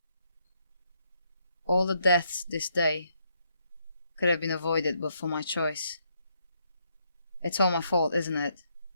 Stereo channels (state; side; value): inverted; both; correlation -0.75